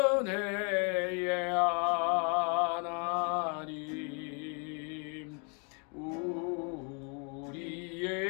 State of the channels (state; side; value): quieter; right; 37.5 dB